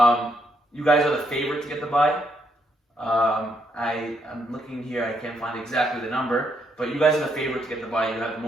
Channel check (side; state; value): both; normal; correlation 0.75